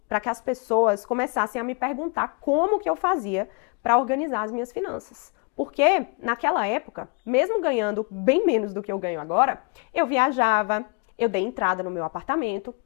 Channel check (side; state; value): right; quieter; 36.0 dB